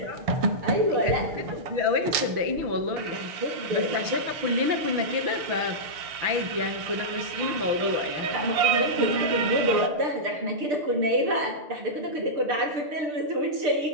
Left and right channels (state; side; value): late; left; 6.6 ms